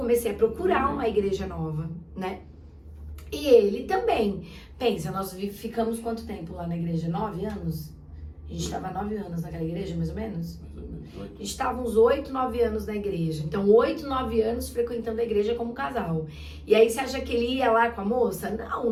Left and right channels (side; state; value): both; identical; correlation 1.00